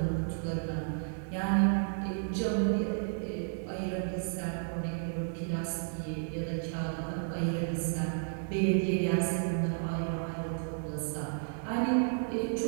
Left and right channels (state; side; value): silent; left; digital silence